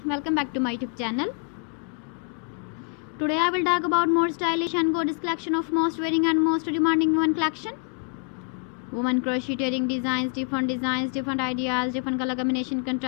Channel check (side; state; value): right; quieter; 38.5 dB